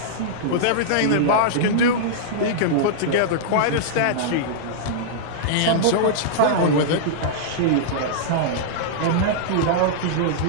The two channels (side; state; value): both; different; correlation -0.02